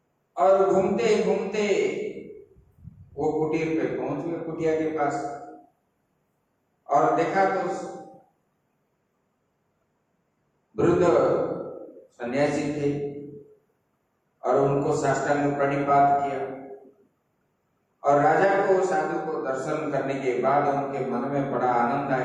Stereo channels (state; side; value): identical; both; correlation 1.00